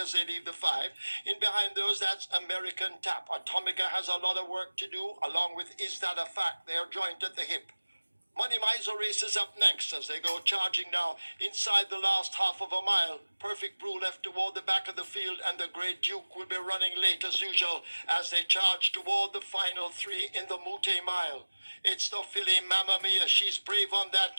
as they leave the five. In behind those, that's American Tap. Atomica has a lot of work to do, along with Is That a Fact? They're joint at the hip. Money Miser races up next as they go charging now inside the last half of a mile. Perfect Brew left toward the back of the field, and the Great Duke will be running late as usual as they charge toward the final three in the Mute Mile. It's the filly Mamma Mia. She's brave on that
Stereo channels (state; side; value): inverted; both; correlation -1.00